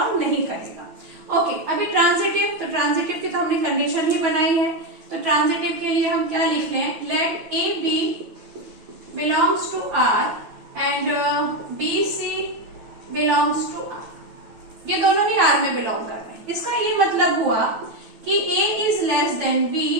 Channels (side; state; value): left; late; 9.2 ms